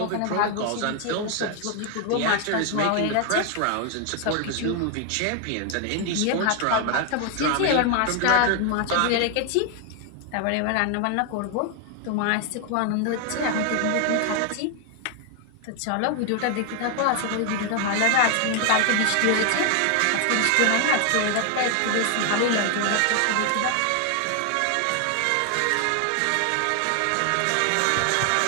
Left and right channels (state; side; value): different; both; correlation 0.00